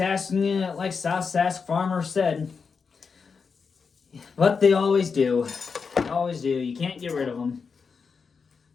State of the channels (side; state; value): right; quieter; 5.4 dB